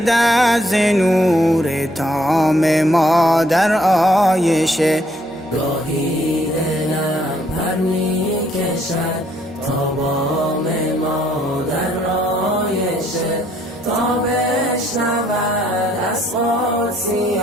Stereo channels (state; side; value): normal; both; correlation 0.67